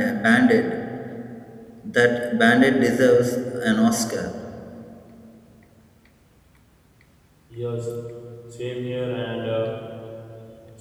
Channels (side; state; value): both; identical; correlation 1.00